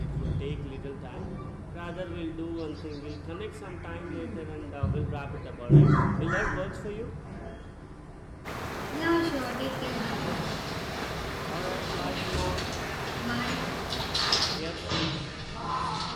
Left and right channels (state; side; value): identical; both; correlation 1.00